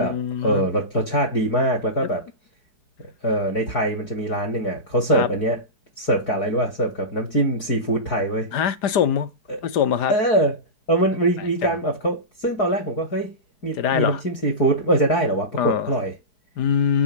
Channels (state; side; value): late; right; 5.0 ms